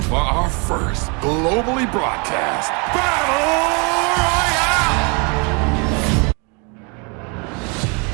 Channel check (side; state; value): left; quieter; 32.9 dB